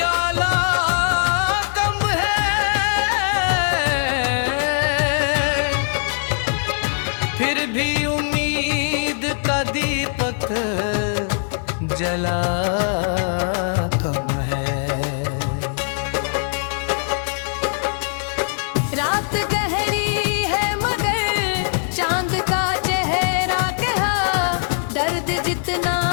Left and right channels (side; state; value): right; silent; digital silence